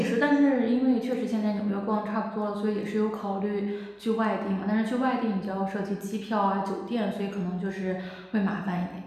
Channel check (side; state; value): both; identical; correlation 1.00